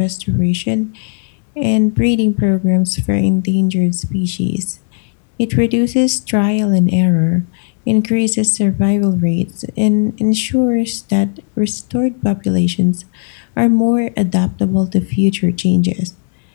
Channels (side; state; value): right; silent; 55 dB below the other